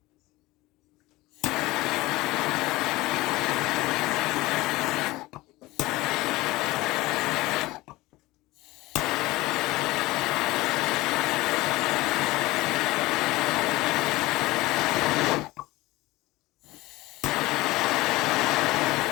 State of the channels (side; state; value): right; quieter; 19.7 dB